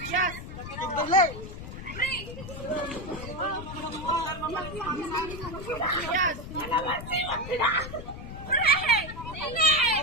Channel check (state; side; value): noise; left; rumble, 10 dB below the sound